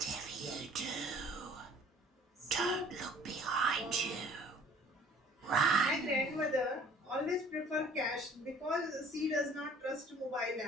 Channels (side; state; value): both; normal; correlation 0.53